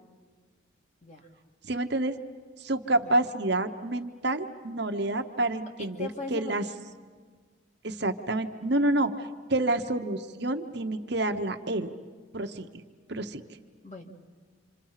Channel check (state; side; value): normal; both; correlation -0.06